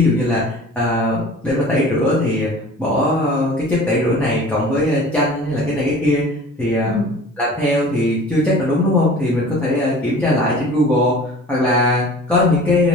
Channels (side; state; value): both; normal; correlation 0.43